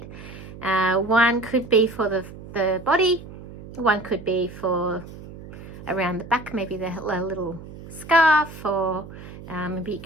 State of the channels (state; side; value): noise; right; hum, 15 dB below the sound